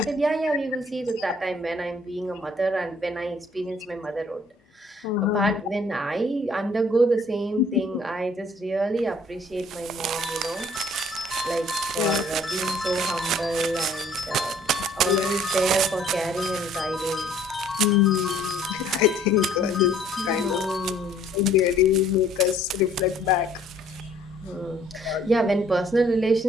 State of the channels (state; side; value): normal; both; correlation 0.59